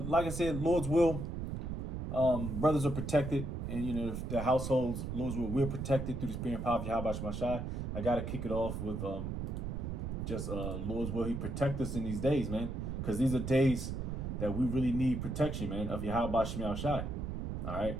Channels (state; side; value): noise; right; rumble, 4 dB below the sound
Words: like I said, Lord's will, brothers are protected, and you know the households, Lord's will, we're protected through the spirit and power of Yahweh Shemashai. I gotta kick it off with just Lord's will. He protect us in these days, man, because these are days that we really need protection, man, of Yahweh Shemashai. All right,